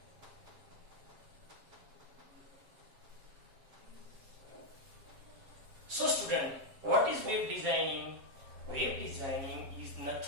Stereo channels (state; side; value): late; left; 7.4 ms